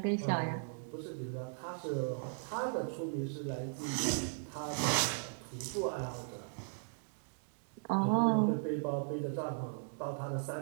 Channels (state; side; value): silent; left; digital silence